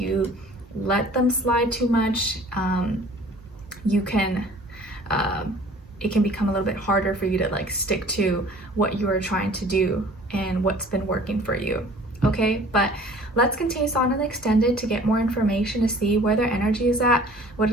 let them slide too much, you can it can become a little bit harder for you to like stick to what you are trying to do and what's been working for you. Okay, but let's continue on and extended to get more information, to see where their energy is at, what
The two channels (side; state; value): both; normal; correlation 0.49